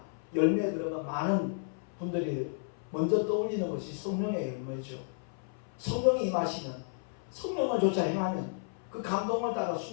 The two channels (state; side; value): silent; right; 56 dB below the other